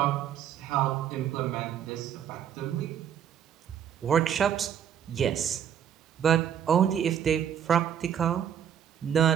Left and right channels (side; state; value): left; quieter; 9.1 dB